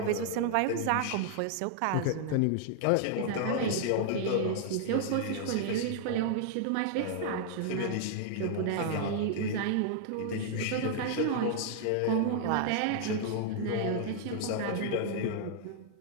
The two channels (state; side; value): different; both; correlation -0.01